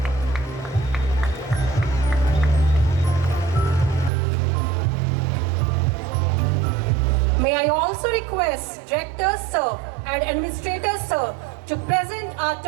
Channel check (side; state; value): left; drops out; at 4.1 s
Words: May I also request Director Sir and Administrator Sir to present our